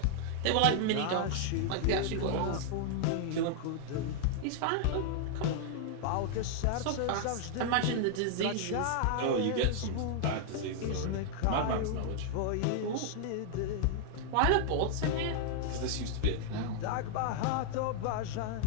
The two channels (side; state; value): both; different; correlation 0.00